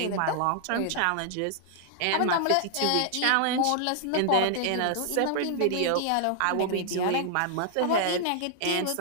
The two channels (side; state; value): both; different; correlation 0.00